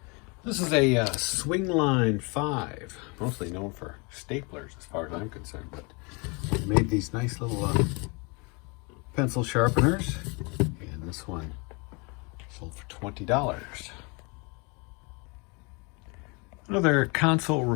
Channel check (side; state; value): right; quieter; 30.6 dB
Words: This is a Swingline 5, mostly known for staplers as far as I'm concerned, but they made these nice little pencil sharpeners, and this one sold for $20. Another console